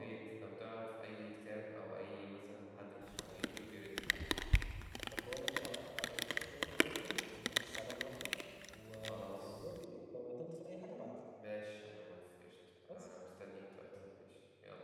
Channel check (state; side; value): identical; both; correlation 1.00